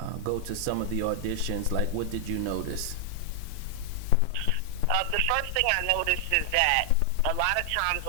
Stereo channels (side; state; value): both; different; correlation 0.00